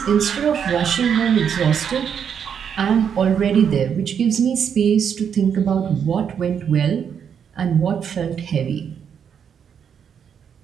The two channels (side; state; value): left; quieter; 7.7 dB